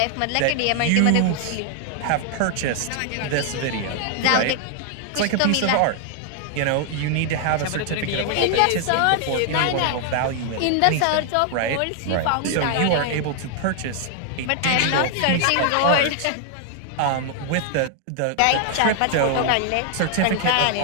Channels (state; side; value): different; both; correlation 0.00